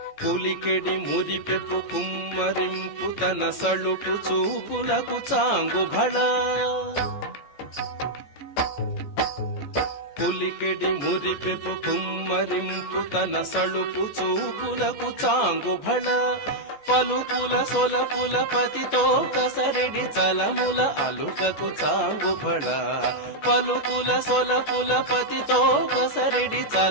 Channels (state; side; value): late; right; 14 ms